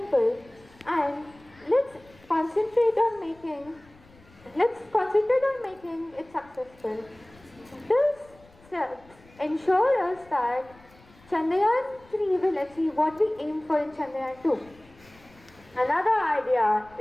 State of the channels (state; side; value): noise; left; rumble, 27 dB below the sound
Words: and let's concentrate on making it successful. This steps ensure us that Chandrayaan 3 will achieve what we aim for in Chandrayaan 2. Another idea